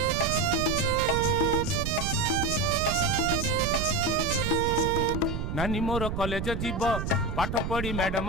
नानी मोर कॉलेज जीव पाठ पढ़ी मैडम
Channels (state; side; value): noise; right; rumble, 3 dB below the sound